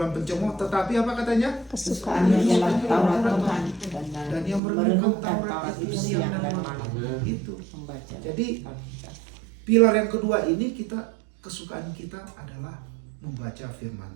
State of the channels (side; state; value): left; drops out; at 4.6 s